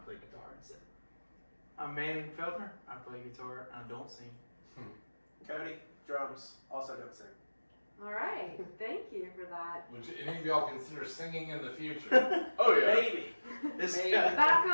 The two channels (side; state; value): both; inverted; correlation -1.00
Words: guitar and sing. I'm Manning Feldner. I play guitar and I don't sing. Cody, drums, also don't sing. All right, thank you for that. Would any of y'all consider singing in the future? Oh yeah. Maybe. This Maybe. guy,